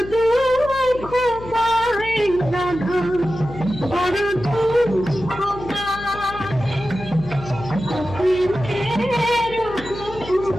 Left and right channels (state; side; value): noise; left; hum, 14 dB below the sound